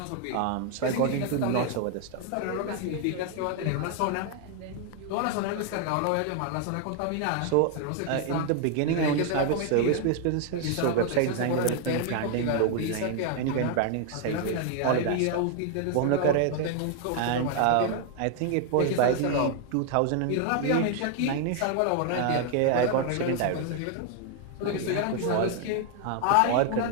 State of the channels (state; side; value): different; both; correlation 0.00